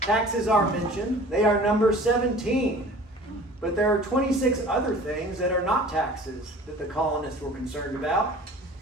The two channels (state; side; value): normal; both; correlation 0.45